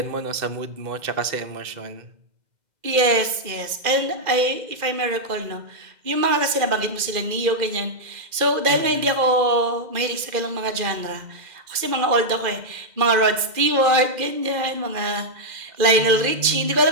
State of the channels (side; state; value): left; late; 2.0 ms